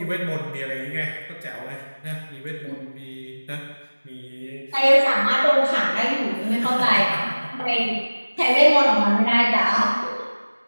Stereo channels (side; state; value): both; inverted; correlation -1.00